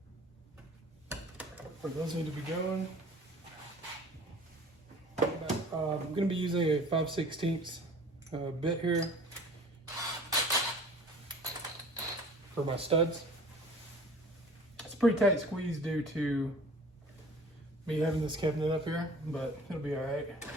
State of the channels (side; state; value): both; normal; correlation 0.46